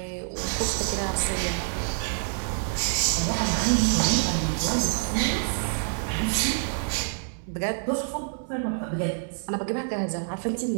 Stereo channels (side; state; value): left; silent; 60 dB below the other